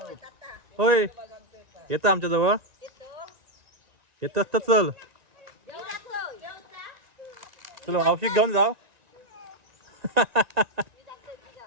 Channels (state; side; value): late; left; 1.9 ms